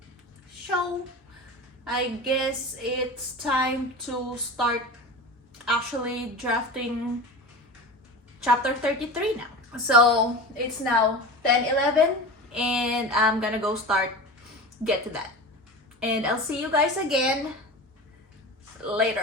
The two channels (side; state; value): both; normal; correlation 0.31